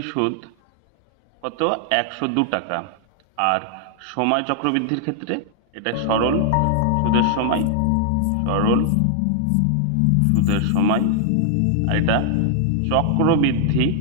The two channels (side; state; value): both; different; correlation 0.00